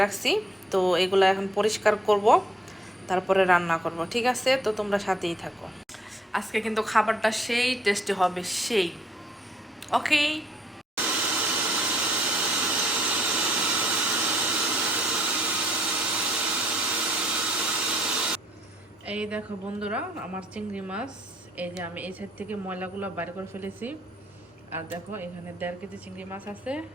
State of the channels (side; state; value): both; normal; correlation 0.68